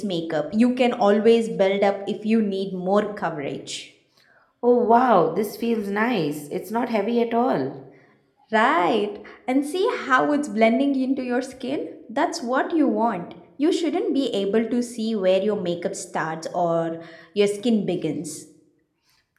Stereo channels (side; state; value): both; identical; correlation 1.00